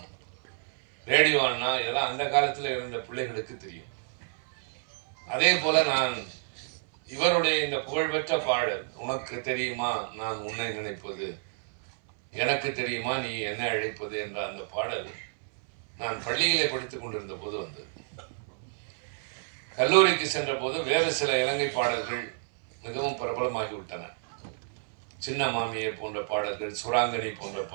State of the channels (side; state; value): left; silent; 58 dB below the other